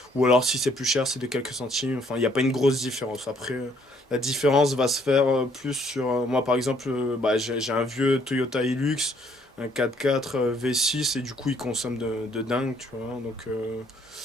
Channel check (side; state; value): both; normal; correlation 0.65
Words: ou alors si c'est plus cher c'est de quelques centimes, enfin il n'y a pas une grosse différence. Après la différence va se faire plus sur... moi par exemple, j'ai un vieux Toyota Hilux, un 4x4 V6, et du coup il consomme de dingue, tu vois.